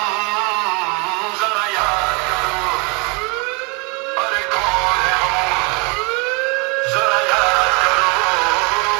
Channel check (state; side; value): quieter; left; 31.2 dB